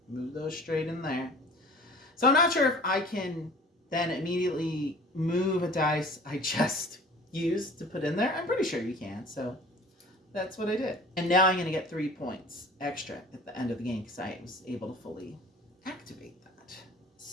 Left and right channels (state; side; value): normal; both; correlation 0.45